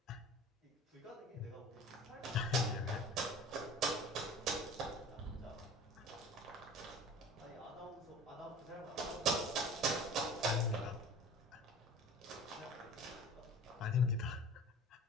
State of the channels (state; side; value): normal; both; correlation 0.41